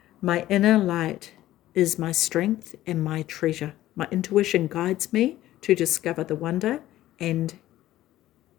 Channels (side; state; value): right; quieter; 14.6 dB